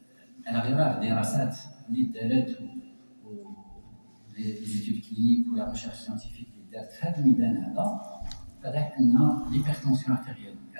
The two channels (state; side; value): inverted; both; correlation -1.00